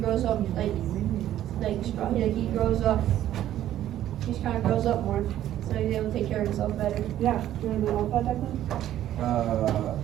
up he grows up, he just kinda grows up more, so he's able to take care of himself better. Yeah. Do you want to know about that, Declan?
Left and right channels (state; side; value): quieter; left; 12.4 dB